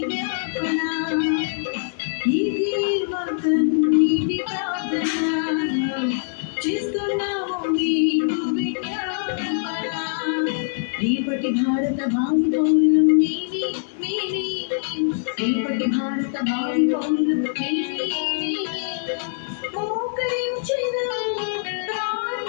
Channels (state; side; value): silent; right; digital silence